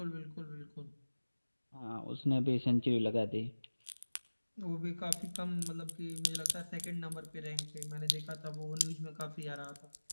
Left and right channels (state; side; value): inverted; both; correlation -1.00